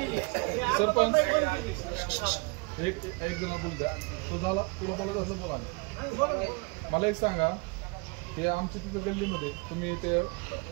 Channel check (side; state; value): left; quieter; 30.3 dB